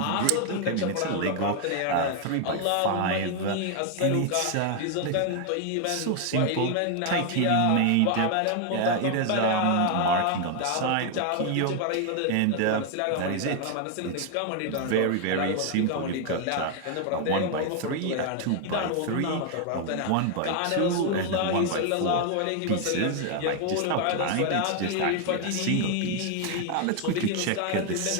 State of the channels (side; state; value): both; different; correlation 0.00